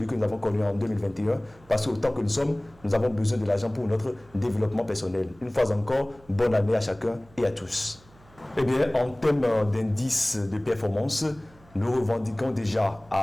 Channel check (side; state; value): right; noise; hum, 27 dB below the sound